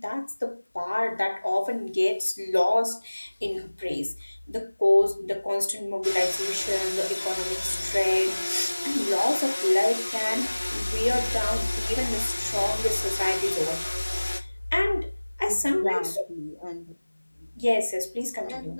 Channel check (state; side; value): inverted; both; correlation -1.00